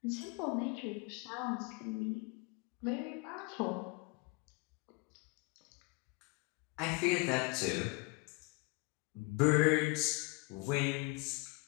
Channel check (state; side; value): quieter; right; 27.5 dB